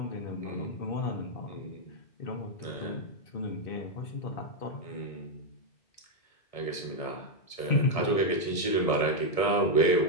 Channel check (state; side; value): late; right; 1.7 ms